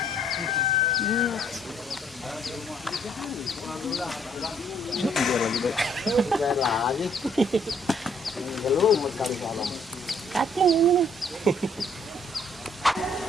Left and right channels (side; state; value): both; normal; correlation 0.64